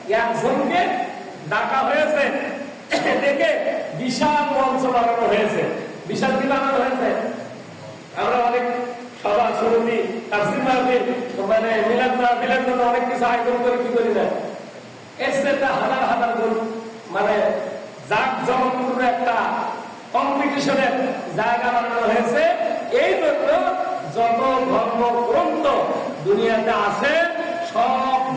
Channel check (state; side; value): identical; both; correlation 1.00